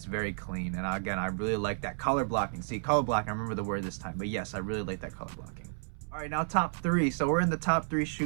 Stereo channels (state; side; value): silent; left; 57 dB below the other